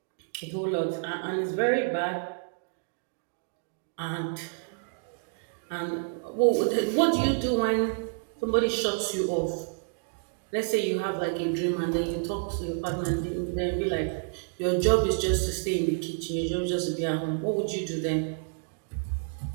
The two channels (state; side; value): silent; left; digital silence